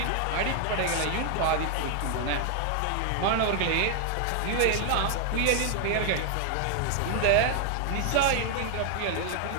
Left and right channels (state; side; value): different; both; correlation 0.00